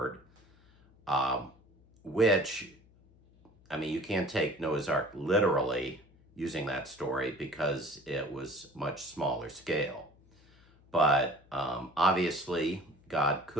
Which, I mean, you can't take Noah's Ark literally using that story because it was much smaller scale. But obviously, God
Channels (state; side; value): noise; left; hum, 28 dB below the sound